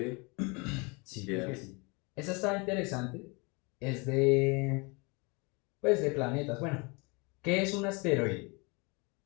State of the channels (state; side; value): quieter; right; 29.6 dB